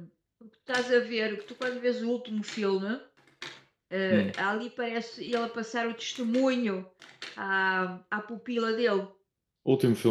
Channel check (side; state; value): both; identical; correlation 1.00